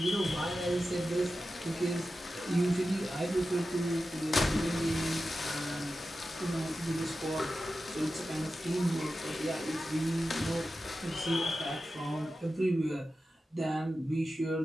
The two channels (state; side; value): normal; both; correlation 0.92